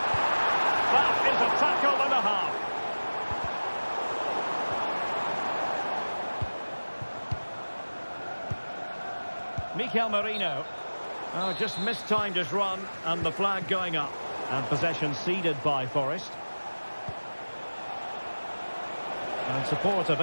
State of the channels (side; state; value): both; inverted; correlation -1.00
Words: That is a tackle and a half. Mikel Merino. Oh, just mistimed his run, and the flag going up. And possession ceded by Forest. And support